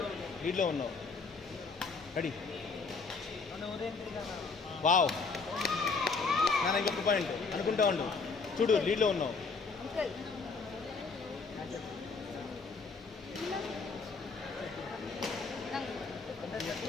లీడ్లో ఉన్నావు రెడీ వావ్ నాన్న ఇంకొక పాయింట్ అనుకుంటా ఉండు చూడు లీడ్లో ఉన్నావు అంకుల్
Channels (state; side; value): quieter; right; 4.5 dB